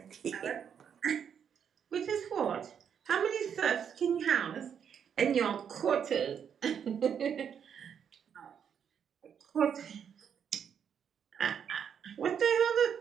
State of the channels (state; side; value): quieter; left; 7.9 dB